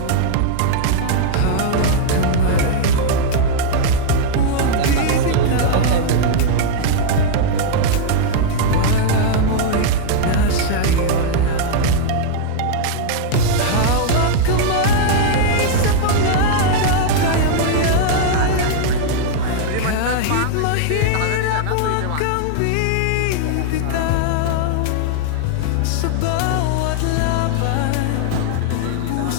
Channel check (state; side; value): different; both; correlation -0.01